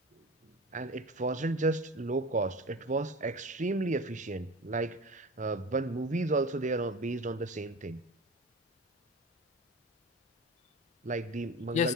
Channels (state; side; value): normal; both; correlation 0.32